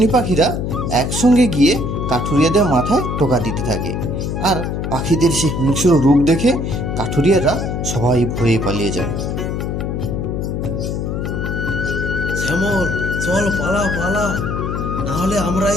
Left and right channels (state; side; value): noise; left; hum, 2 dB below the sound